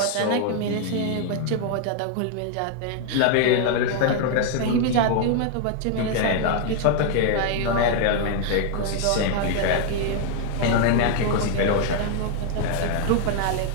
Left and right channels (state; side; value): different; both; correlation 0.00